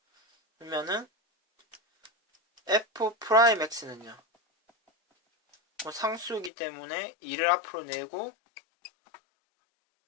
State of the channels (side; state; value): right; drops out; at 6.5 s